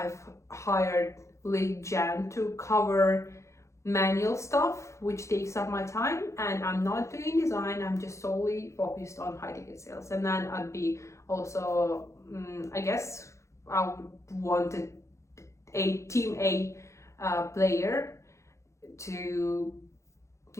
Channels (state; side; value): late; right; 0.14 ms